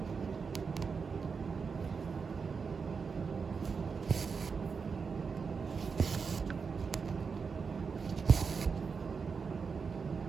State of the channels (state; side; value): quieter; left; 5.4 dB